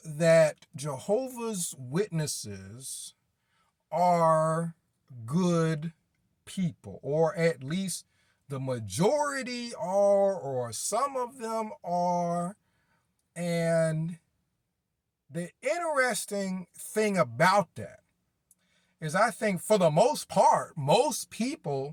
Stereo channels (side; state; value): both; identical; correlation 1.00